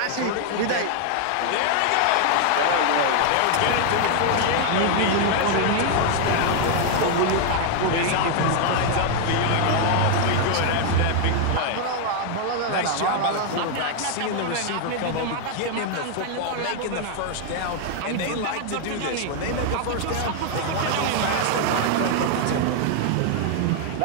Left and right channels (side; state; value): both; different; correlation 0.00